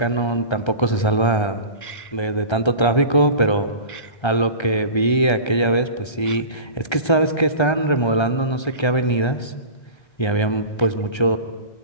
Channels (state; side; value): late; right; 1.3 ms